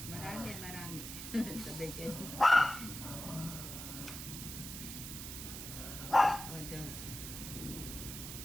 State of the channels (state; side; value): noise; right; hiss, 8 dB below the sound